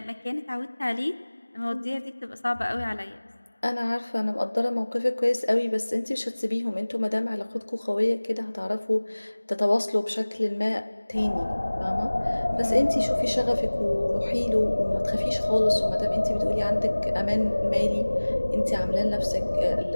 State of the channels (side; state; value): both; inverted; correlation -1.00